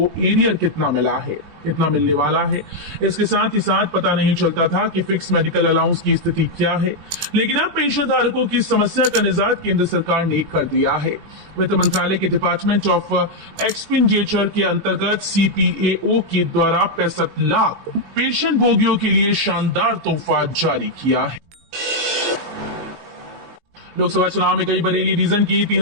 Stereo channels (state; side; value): late; left; 20 ms